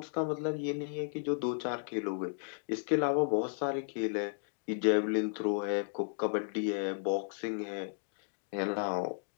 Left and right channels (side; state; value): right; silent; digital silence